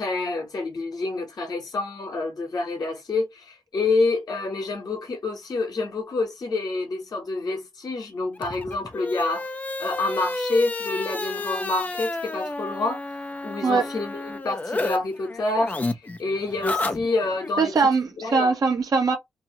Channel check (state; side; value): normal; both; correlation 0.73